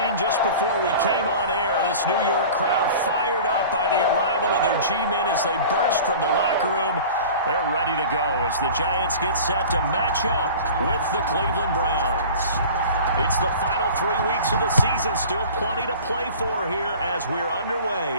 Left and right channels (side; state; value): both; inverted; correlation -0.40